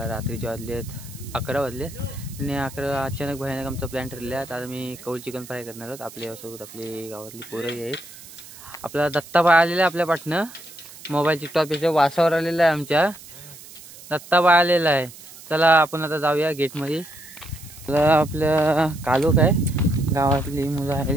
रात्रीचे वाजले आहेत 11 वाजले आणि 11 अचानक भयानक आमचा प्लॅन ठरला आहे. आता मी कौल चिकन फ्राय करणार आहोत. आपल्यासोबत आपली गावातली पोरंही आहेत. आपला दत्ताबाई आलेला आहे आपल्या पाठनं. मोबाईल टिकटॉक याच्या वासावर आलेला आहे. आमच्या दत्ताबाई आलेला आहे. चला आपण आता जाऊया गेटमध्ये. आपल्या कालोख आहे, गावातली मुलं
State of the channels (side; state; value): right; noise; hiss, 18 dB below the sound